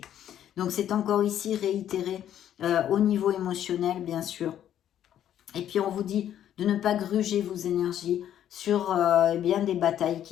Donc c'est encore ici réitéré au niveau émotionnel, bien sûr. Et puis on vous dit de ne pas gruger vos énergies sur des batailles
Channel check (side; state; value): right; quieter; 10.7 dB